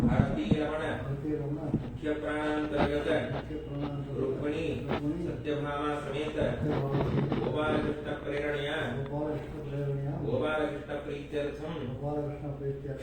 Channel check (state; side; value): identical; both; correlation 1.00